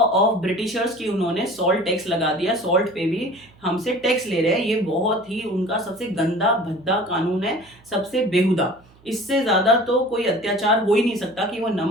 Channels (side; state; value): right; noise; hum, 28 dB below the sound